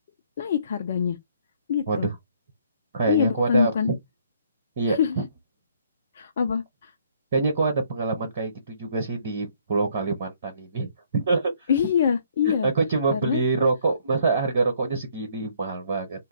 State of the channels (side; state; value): both; inverted; correlation -0.64